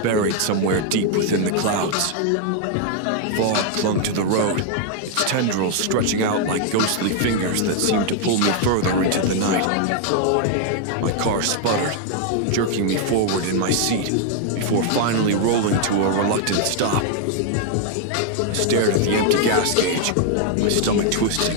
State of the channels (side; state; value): both; different; correlation 0.00